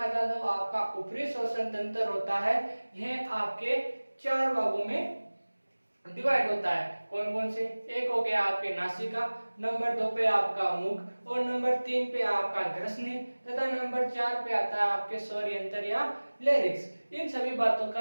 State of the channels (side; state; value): both; inverted; correlation -1.00